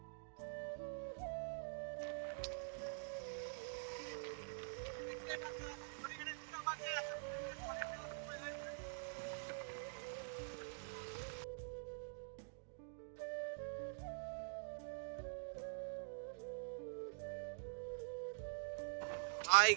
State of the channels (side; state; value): left; silent; digital silence